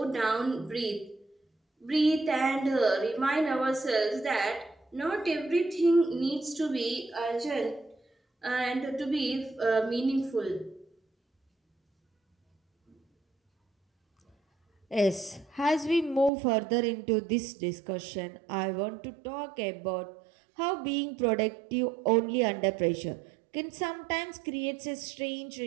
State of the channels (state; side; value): drops out; left; at 16.3 s